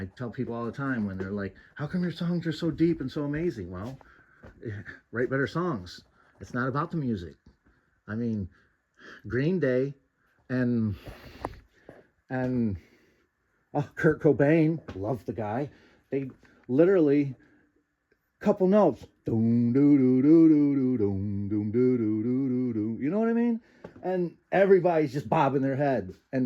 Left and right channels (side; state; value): both; identical; correlation 1.00